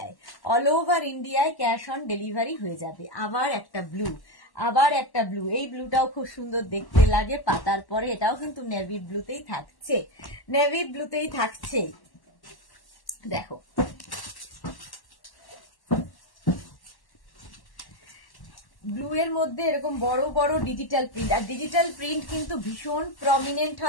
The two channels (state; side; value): late; right; 1.1 ms